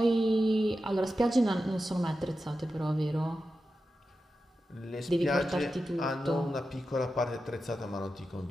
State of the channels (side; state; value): both; normal; correlation 0.91